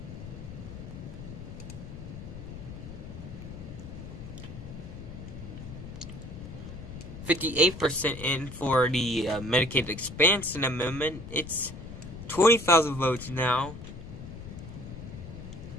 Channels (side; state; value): left; noise; rumble, 11 dB below the sound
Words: %58 in for the Medicaid expansion amendment. It's 20,000 votes now.